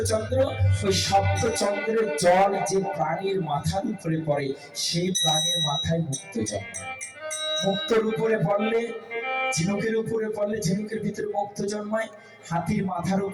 ওই সপ্তচন্দ্রের জল যে প্রাণীর মাথার উপরে পড়ে, সেই প্রাণীর মাথায় মুক্ত জন্মায়। মুক্তর উপরে পড়লে, ঝিনুকের উপরে পড়লে ঝিনুকের ভিতরে মুক্ত জন্মায়, হাতির মাথার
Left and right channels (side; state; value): both; identical; correlation 1.00